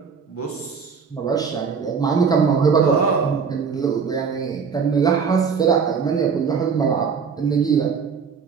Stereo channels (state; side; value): quieter; left; 6.0 dB